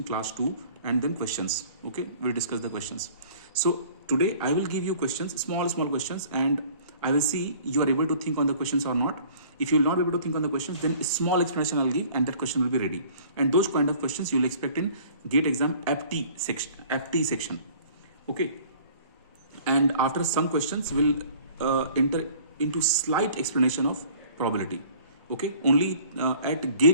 class 2 and then questions. Okay, we'll discuss the questions. So today I will give you questions, small questions, and I will see you are able to think on the questions or not. If you will not be able to think on the questions, then a small explanation I'll give and that question will be ready. And those kind of questions you will expect in GATE exam FT section. Okay, and after some questions we'll enter into slight explanation of probability. Okay, only at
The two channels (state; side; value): inverted; both; correlation -0.51